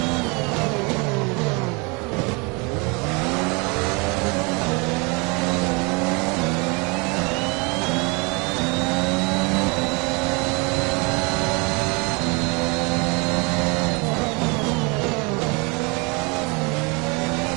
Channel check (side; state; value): left; quieter; 29.6 dB